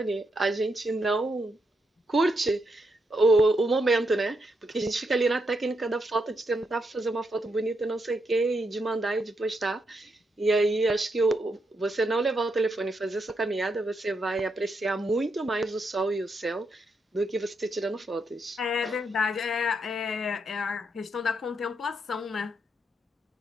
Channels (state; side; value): normal; both; correlation 0.80